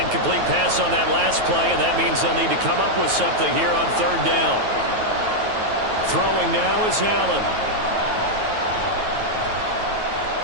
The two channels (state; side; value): late; left; 9.2 ms